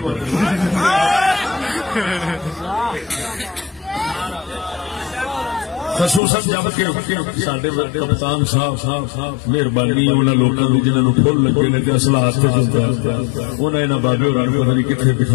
خصوصاً جب کہ ساڈے کپتان صاحب مہربانی انہاں لوکاں دی جنہاں نوں پھل لگے نے تے اصلہ ہاتھ تے ہوندا انہاں انہاں بابے ہوراں نوں پتہ نہیں کتھے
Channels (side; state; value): right; drops out; at 6.2 s